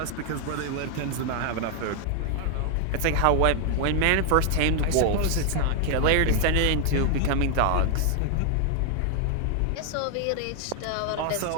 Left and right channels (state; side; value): different; both; correlation 0.00